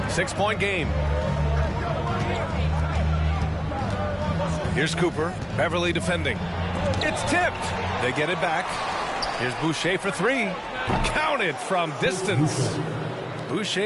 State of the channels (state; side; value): identical; both; correlation 1.00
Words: 6-point game. Here's Cooper. Beverly defending. It's tipped. They get it back. Here's Boucher for three. Counted from distance.